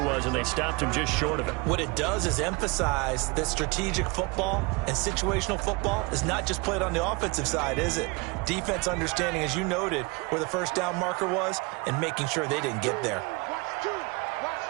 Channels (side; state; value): left; quieter; 27.3 dB